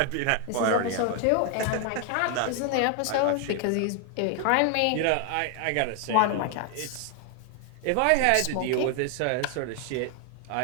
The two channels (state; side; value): different; both; correlation 0.00